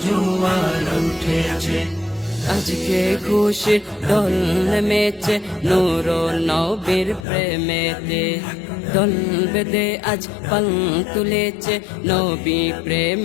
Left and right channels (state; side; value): drops out; right; at 7.2 s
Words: জোয়ার উঠেছে। আজকে খুশির দোল নেমেছে নূর নবীর প্রেমেতে। দোল বেঁধে আজ পাল তুলেছে নবী